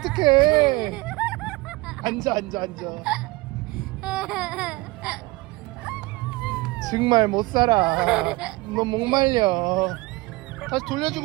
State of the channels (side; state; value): left; quieter; 22.2 dB